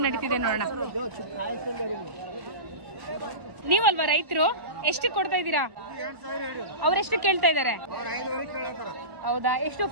ನಡೀತಿದೆ ನೋಡೋಣ. ನೀವಲ್ವಾ ರೈತರು? ಎಷ್ಟು ಕೊಡ್ತಾ ಇದ್ದೀರಾ? ಅವ್ರೆಷ್ಟು ಕೇಳ್ತಾ ಇದ್ದಾರೆ? ಹೌದಾ? ಎಷ್ಟು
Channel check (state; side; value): late; left; 1.4 ms